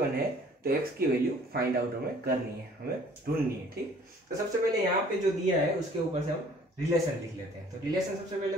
है तो x की वैल्यू फाइंड आउट हमें करनी है, हमें ढूंढनी है। ठीक, तो सबसे पहले यहाँ पे जो दिया है उसके ऊपर से हम रिलेशन लिख लेते हैं। तो रिलेशन सबसे पहले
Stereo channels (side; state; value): both; normal; correlation 0.55